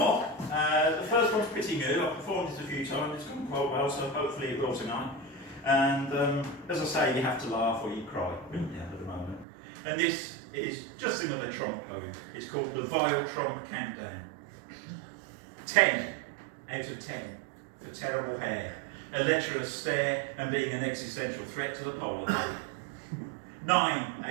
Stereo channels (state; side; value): drops out; left; at 9.5 s